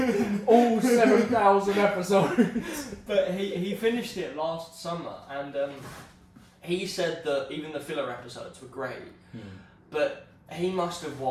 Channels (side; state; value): both; identical; correlation 1.00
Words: Piece. All 7,000 episodes. But he finished it last summer, and he said that even the filler episodes were great, but he must have